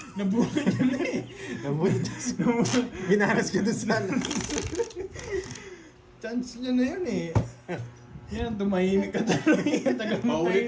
Nabuhay niya na eh. Nabulit. Binaras ka doon sa Chance niya na yun eh. Yan, tumahimik ka talaga. Tagal mo tayo.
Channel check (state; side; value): identical; both; correlation 1.00